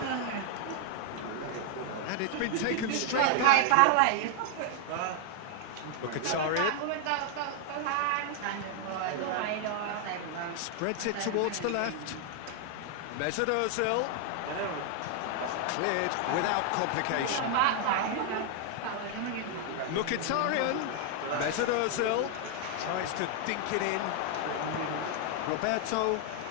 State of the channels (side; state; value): both; different; correlation 0.00